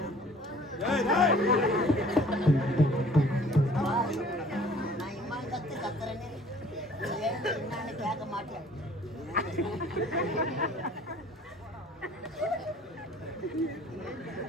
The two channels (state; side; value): normal; both; correlation 0.53